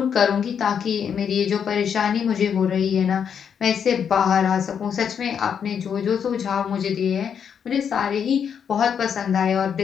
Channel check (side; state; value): right; quieter; 7.6 dB